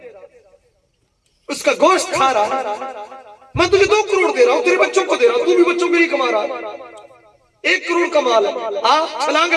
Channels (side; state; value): both; identical; correlation 1.00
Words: اس کا گوشت کھا رہا، میں تجھے 2 کروڑ دے رہا ہوں، تیرے بچوں کو دے رہا ہوں، تو بھی بچوں کے لیے کما رہا، 1 کروڑ کا مال ہے، آ چھلانگ